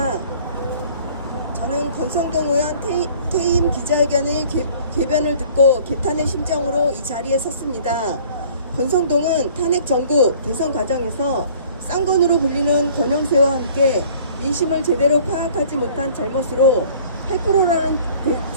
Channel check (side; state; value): both; inverted; correlation -0.52